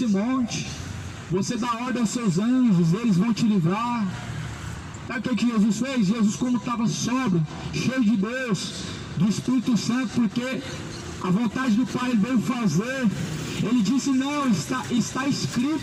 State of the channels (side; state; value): both; identical; correlation 1.00